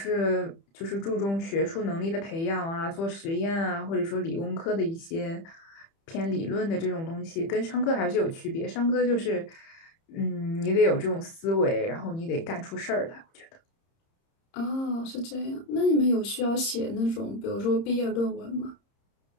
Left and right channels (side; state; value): right; late; 30 ms